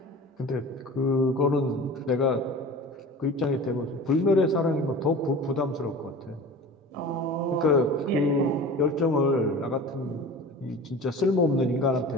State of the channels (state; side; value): normal; both; correlation 0.37